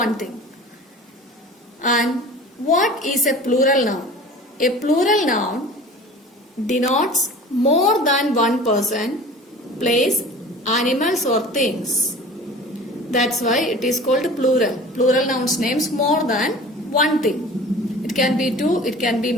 thing. And what is a plural noun? A plural noun denotes more than one person, place, animals or things. That's why it is called plural. Plural nouns names more than one thing. It can be two, it can be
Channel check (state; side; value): normal; both; correlation 0.41